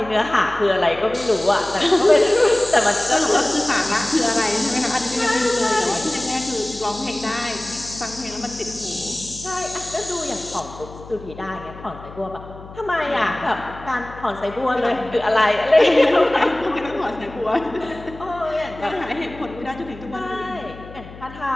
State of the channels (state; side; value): noise; left; hum, 16 dB below the sound